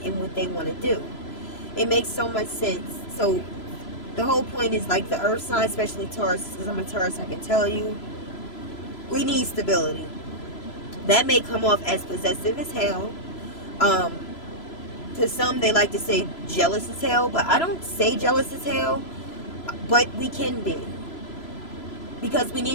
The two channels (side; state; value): right; late; 3.0 ms